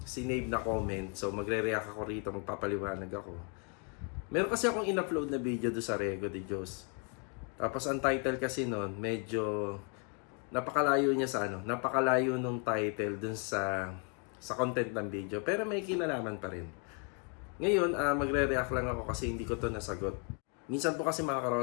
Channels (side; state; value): right; quieter; 38.3 dB